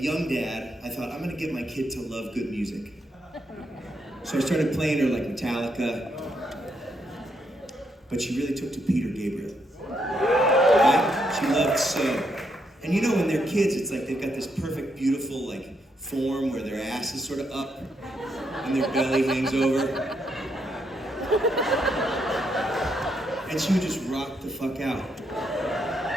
dad, I thought, I'm gonna get my kid to love good music. So I started playing her like Metallica, but she really took to Peter Gabriel. Right? She loved So. And you know, when they're kids, it's like they've got this perfect, beautiful, like, form where their ass is sort of up and their belly hangs over. And she would just rock the fuck out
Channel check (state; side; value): normal; both; correlation 0.78